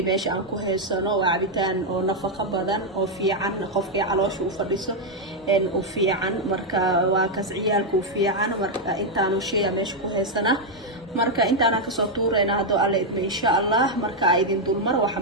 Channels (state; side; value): normal; both; correlation 0.00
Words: باش أنكو هالسنة وعبيتان أو نفقة بدن أو في عن قفقي على شو فريسه إن وفي عن مركا وكسعيالك وفي عن مركا أنت شيء باش كو هالسنة marka intaana ka soo tuurayna hado alle idma insha Allah marka ay idin dulmar waxa